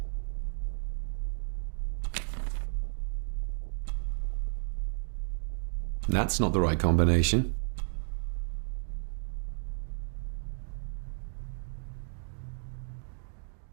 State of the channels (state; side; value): silent; left; digital silence